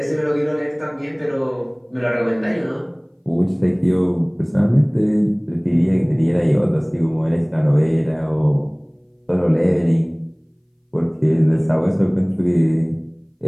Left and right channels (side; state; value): both; identical; correlation 1.00